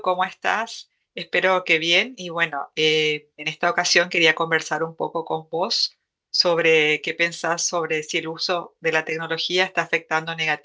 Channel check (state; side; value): identical; both; correlation 1.00